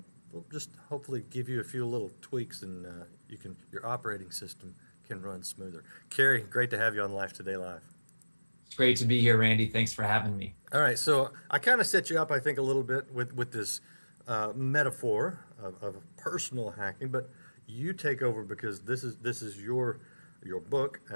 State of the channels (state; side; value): inverted; both; correlation -1.00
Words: just hopefully give you a few little tweaks, and your operating system can run smoother. Kary, great to have you on Life Today Live. It's great to be here, Randy. Thanks for having me. All right, so I kind of set you up, I think, a little bit with this metaphor of personal hacking, but you take over because this is your book